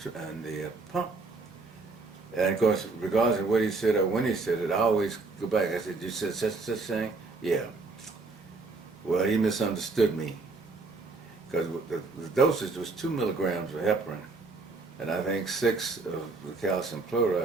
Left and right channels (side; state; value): left; quieter; 3.7 dB